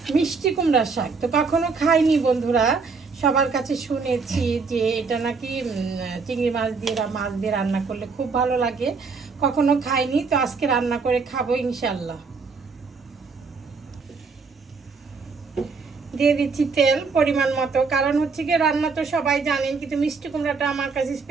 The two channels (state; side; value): quieter; left; 4.7 dB